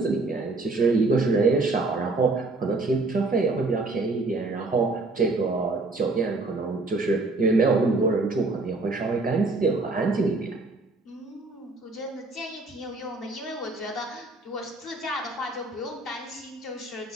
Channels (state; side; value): quieter; left; 3.2 dB